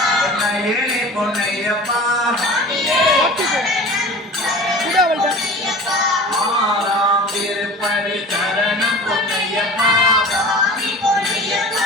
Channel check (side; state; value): both; normal; correlation 0.38